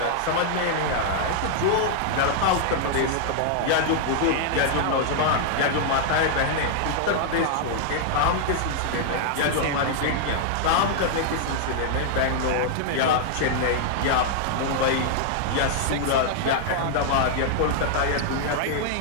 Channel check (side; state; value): both; different; correlation -0.01